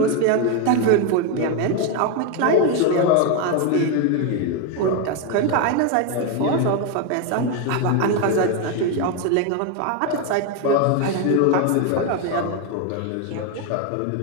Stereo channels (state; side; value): different; both; correlation 0.02